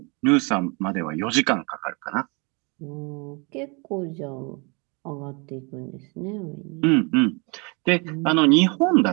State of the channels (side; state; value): left; quieter; 31.2 dB